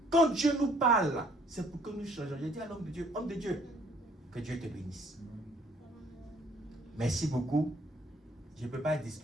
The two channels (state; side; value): normal; both; correlation 0.61